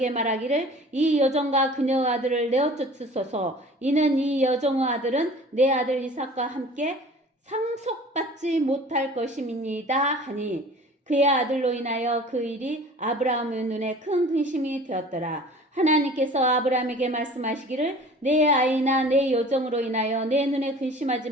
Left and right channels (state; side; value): normal; both; correlation 0.45